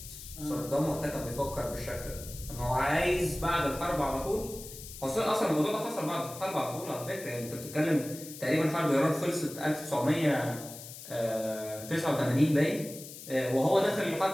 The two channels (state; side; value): noise; left; hiss, 13 dB below the sound